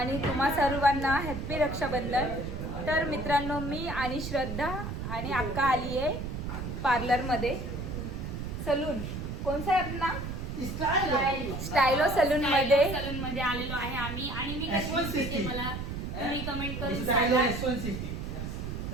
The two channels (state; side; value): noise; right; rumble, 5 dB below the sound